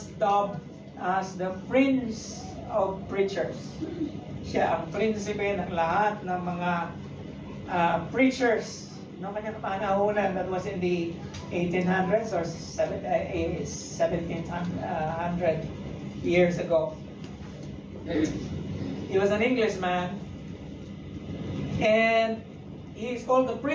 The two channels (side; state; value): both; identical; correlation 1.00